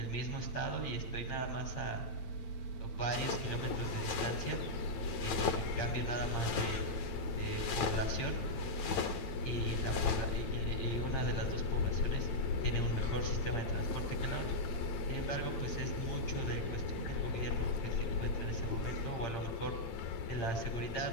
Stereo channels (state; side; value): late; right; 9.2 ms